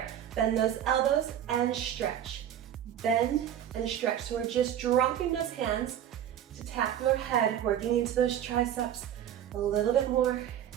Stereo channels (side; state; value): left; quieter; 10.4 dB